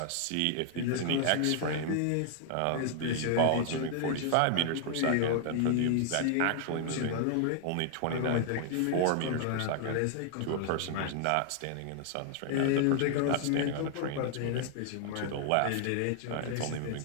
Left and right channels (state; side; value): different; both; correlation 0.00